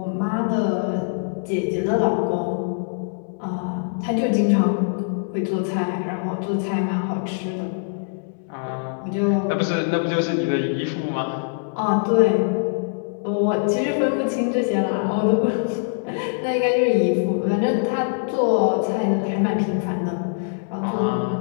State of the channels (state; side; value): silent; right; 63 dB below the other